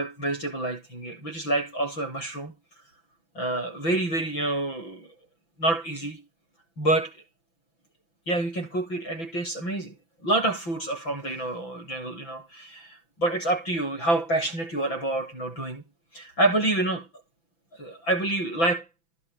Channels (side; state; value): right; late; 6.0 ms